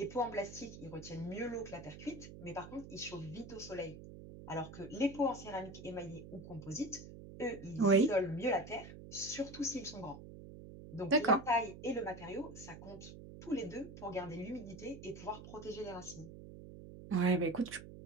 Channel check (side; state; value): right; noise; hum, 14 dB below the sound